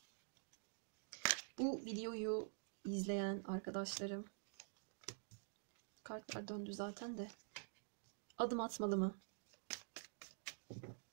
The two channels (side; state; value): left; silent; digital silence